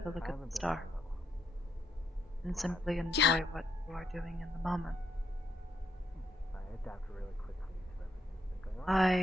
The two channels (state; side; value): normal; both; correlation 0.77